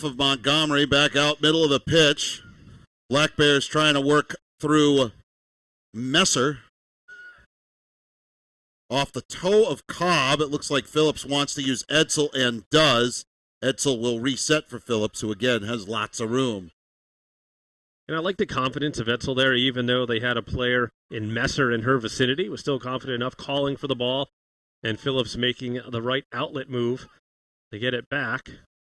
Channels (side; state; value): both; identical; correlation 1.00